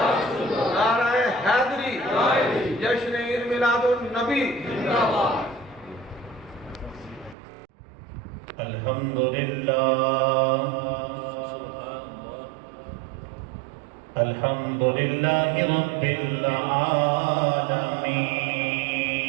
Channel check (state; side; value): drops out; left; at 7.4 s